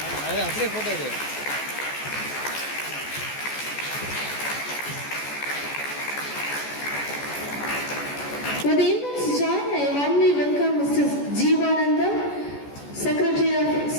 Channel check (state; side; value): late; right; 14 ms